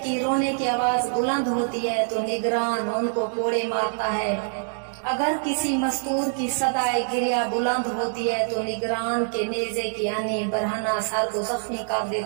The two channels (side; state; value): left; silent; digital silence